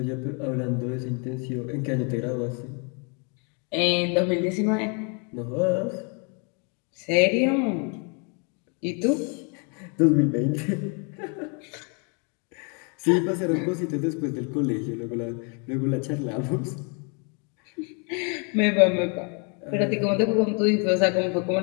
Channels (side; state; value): right; quieter; 36.5 dB